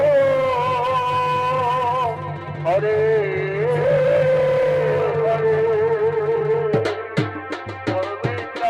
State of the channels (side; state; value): both; identical; correlation 1.00